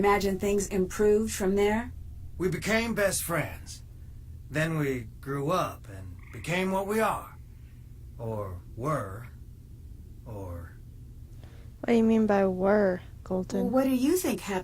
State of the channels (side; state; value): both; identical; correlation 1.00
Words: things improved from there? We became best friends. Then we grew up and became what we are. Or were. Or... What do you mean by were, Well, Colton? what do you think